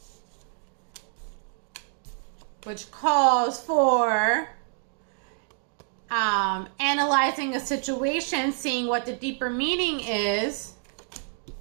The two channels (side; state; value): left; silent; 60 dB below the other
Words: which calls for analyzing a situation, seeing what the deeper meaning is,